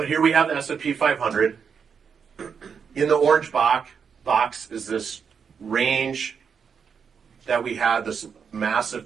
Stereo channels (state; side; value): quieter; left; 6.5 dB